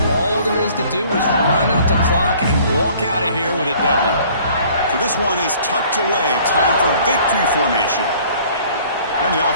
all there is to do is run out the clock and walk out of here with a W. So this one is tucked away. Time for victory formation. And the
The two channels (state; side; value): inverted; both; correlation -0.54